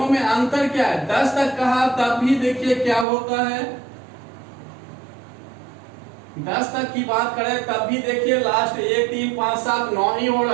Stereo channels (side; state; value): left; drops out; at 3.1 s